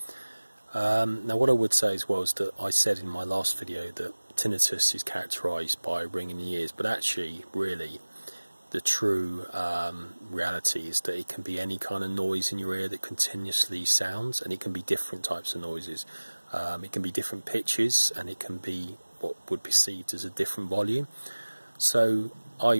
Now what I would say as well is that I said in my last video that tinnitus is characterised by ringing in the ears, but actually really the true reality is that it can be any kind of noise in your ear that continuously sounds, and it can be different types of noises. It can be different pitches, and it can be what would be perceived as a different volume. So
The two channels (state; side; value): inverted; both; correlation -1.00